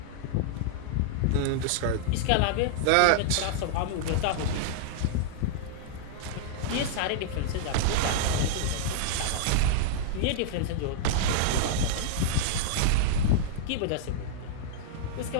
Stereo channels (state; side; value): different; both; correlation -0.01